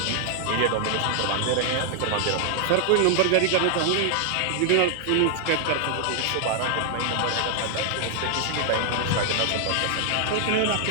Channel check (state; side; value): different; both; correlation 0.00